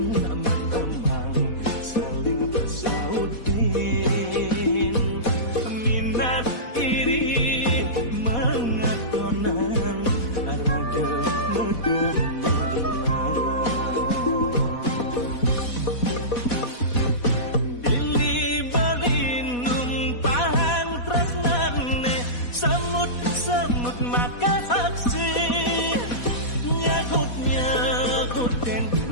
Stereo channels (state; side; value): late; right; 4.1 ms